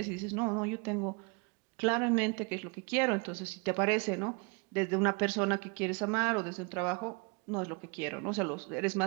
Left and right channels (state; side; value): quieter; left; 32.1 dB